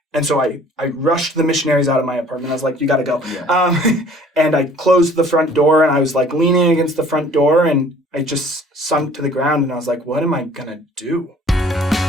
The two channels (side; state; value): both; normal; correlation 0.53